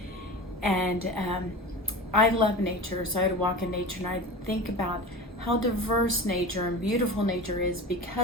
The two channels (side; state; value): both; normal; correlation 0.32